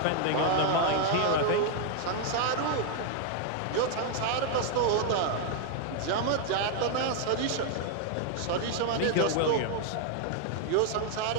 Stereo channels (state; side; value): different; both; correlation 0.00